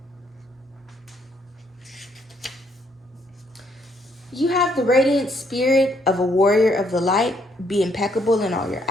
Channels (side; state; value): both; normal; correlation 0.70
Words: You have the radiant spirit of a warrior of the light. Be impeccable in all your